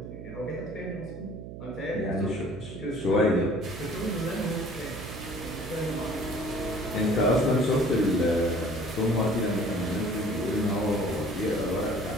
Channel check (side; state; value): right; noise; hum, 11 dB below the sound